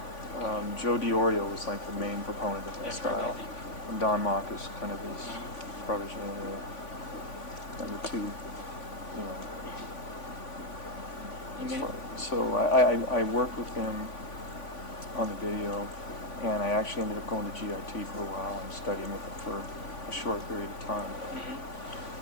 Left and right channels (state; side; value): late; right; 3.5 ms